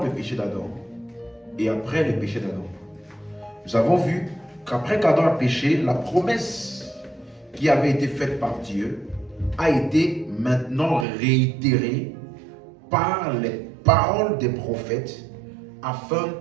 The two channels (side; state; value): left; drops out; at 11.1 s